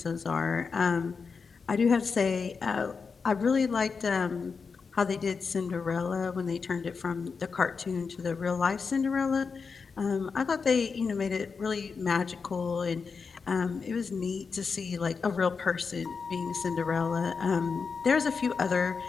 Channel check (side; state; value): right; quieter; 5.2 dB